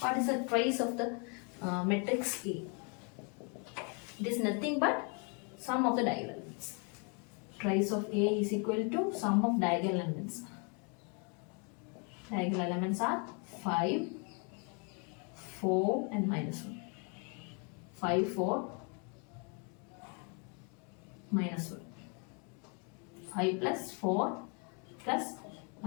is the trace of the matrix A? It is nothing but sum of the diagonal elements. Trace of A is equal to sum of diagonal elements. Diagonal elements are 5, 4 and minus 1. 5, 4, minus 1. 5 plus 4 plus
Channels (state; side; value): quieter; right; 36.2 dB